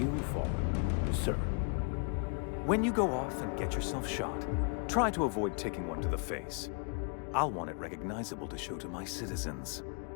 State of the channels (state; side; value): quieter; right; 39.9 dB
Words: fall, sir. When you go off and get yourself shot, try to avoid taking one to the face. I'll want it recognizable to show to my citizens.